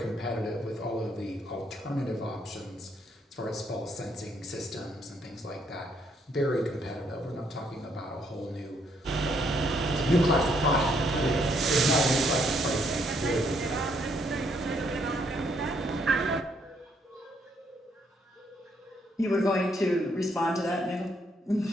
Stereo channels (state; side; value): normal; both; correlation 0.71